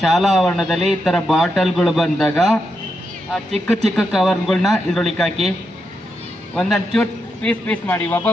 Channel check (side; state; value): both; normal; correlation 0.84